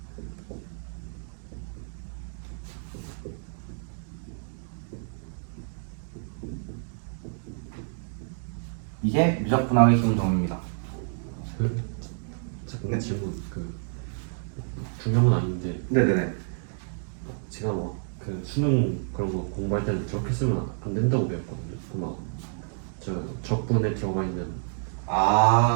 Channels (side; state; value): left; silent; digital silence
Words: 이게 미적분학의 기본 정리입니다. 잠깐 질문. 그 중요한 건 아닌데 네네네. 제가 막 그 수능 그런 거 공부할 때는 저렇게 쓰면 안 된다고 배웠거든요. 그 막 저 적분에 들어가 있는.